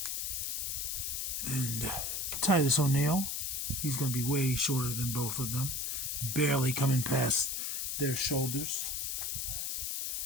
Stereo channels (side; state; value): left; noise; hiss, 1 dB below the sound